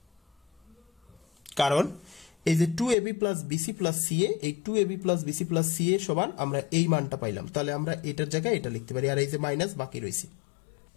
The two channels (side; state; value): right; drops out; at 3.0 s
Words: কারণ এই যে 2ab plus bc plus ca, এই 2ab plus bc plus ca সমান আমরা এই মানটা পাইলাম, তাহলে আমরা এটার জায়গায় এটা লিখতে পারি, আর এই যে মাইনাস বাকি রয়েছে।